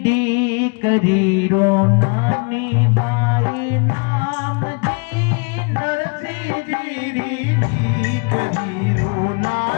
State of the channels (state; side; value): quieter; right; 33.6 dB